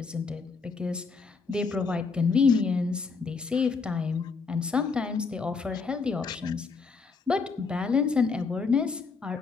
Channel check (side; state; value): right; quieter; 4.8 dB